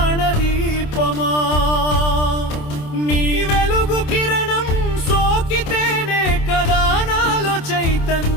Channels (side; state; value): right; late; 27 ms